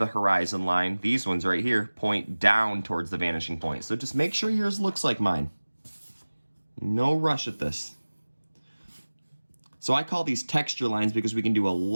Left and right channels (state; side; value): inverted; both; correlation -1.00